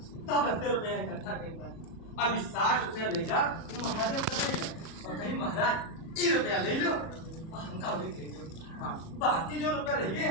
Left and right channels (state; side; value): late; right; 37 ms